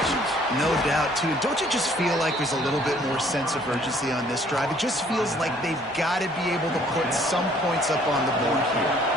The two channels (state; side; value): normal; both; correlation 0.60